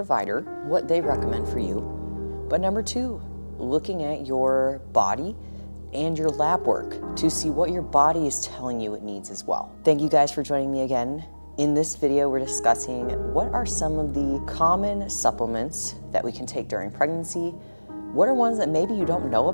what they recommend for you. But number two, looking at your body and your lab work to see what your body is telling you it needs as well. Thank you guys for joining me again. In this video, we're discussing what are some of the common supplements that we can take during pregnancy, what are ones that maybe you don't know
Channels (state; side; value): inverted; both; correlation -1.00